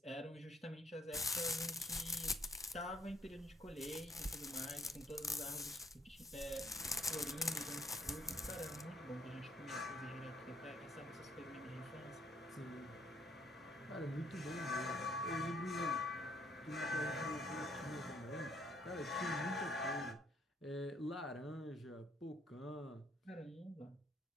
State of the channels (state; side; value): normal; both; correlation 0.66